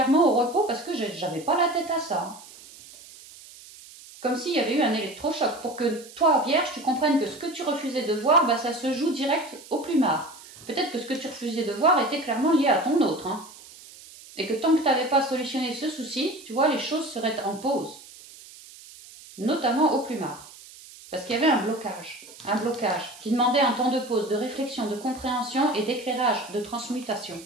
au repos parce que j'avais pas la tête à ça. Hein. Comme s'il y avait eu un électrochoc, pour que toi, Vierge, tu comprennes que ce que tu refusais de voir, bah, ça se joue direct au plumard. Peut-être que ce que tu refusais de voir était clairement lié à ton autre. Hein. Et que tant que tu n'avais pas solutionné ce souci, tu vois, les choses seraient en pause. Notamment au plumard. Parce qu'il y avait un blocage qui demandait un temps de pause, de réflexion, de compréhension et d'éclairage, de transmutation.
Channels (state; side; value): noise; right; hiss, 19 dB below the sound